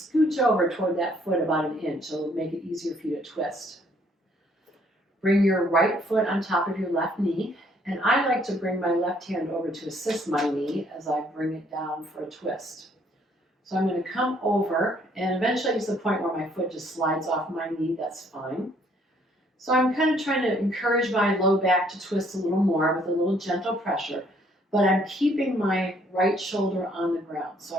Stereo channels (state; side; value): normal; both; correlation 0.65